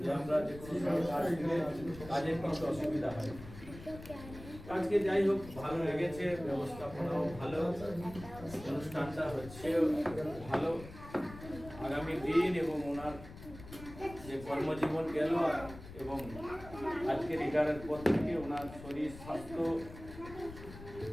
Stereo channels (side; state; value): left; noise; rumble, 15 dB below the sound